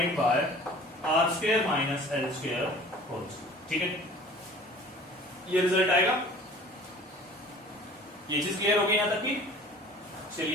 by r square minus l square whole square. ठीक है, ये रिजल्ट आएगा। ये चीज क्लियर हो गई यहां तक की?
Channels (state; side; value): normal; both; correlation 0.46